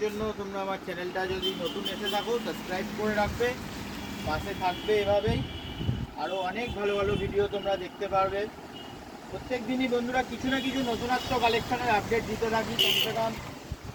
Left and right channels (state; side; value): identical; both; correlation 1.00